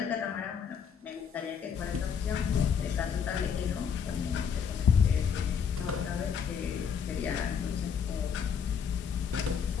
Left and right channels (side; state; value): right; quieter; 7.1 dB